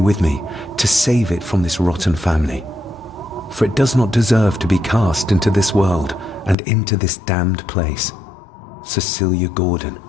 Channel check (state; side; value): drops out; right; at 6.6 s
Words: me to save it from this rotten family. For it does not deserve to be cast into this world and into this damned place. Cecilia Gordon.